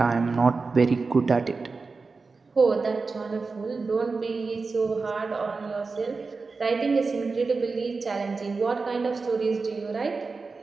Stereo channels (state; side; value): quieter; left; 4.3 dB